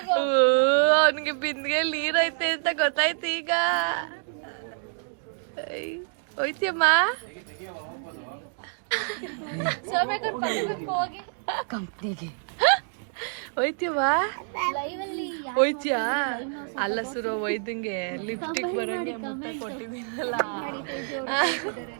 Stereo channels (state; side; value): silent; left; 60 dB below the other